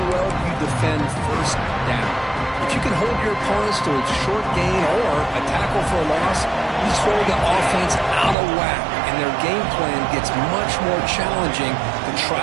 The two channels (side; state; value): left; drops out; at 8.3 s